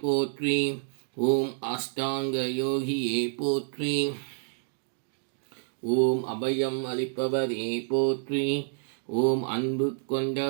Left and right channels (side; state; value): left; silent; digital silence